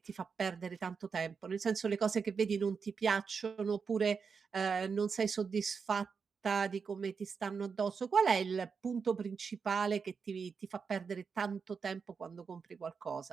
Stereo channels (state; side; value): quieter; left; 5.6 dB